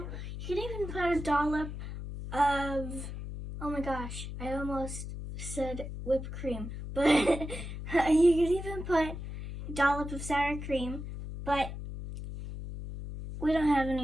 You could even put a dollop of, oh my gosh, I almost said whipped cream, but you could even put a dollop of sour cream, but we don't have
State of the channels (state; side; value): noise; left; hum, 8 dB below the sound